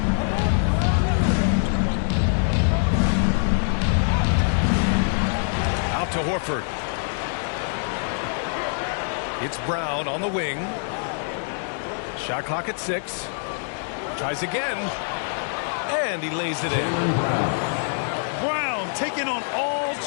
Out to Horford. It's Brown on the wing. Shot clock at 6. Tries again. And he lays it in. Brown taking on all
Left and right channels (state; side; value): silent; right; digital silence